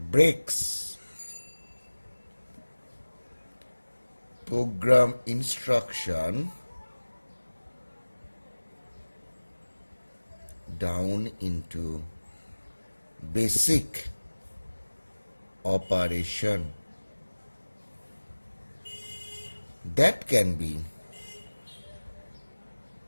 program instruction down into basic operation that can be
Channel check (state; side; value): inverted; both; correlation -1.00